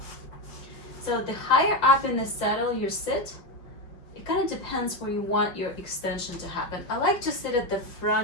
So the higher up in the saddle you sit, it kind of depends where you want your extension to happen. I like to sit at the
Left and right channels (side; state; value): right; late; 5.6 ms